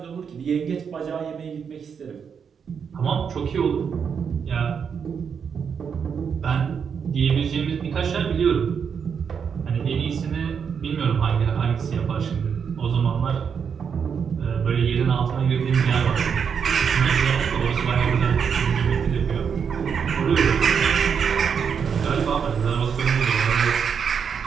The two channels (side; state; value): left; quieter; 6.8 dB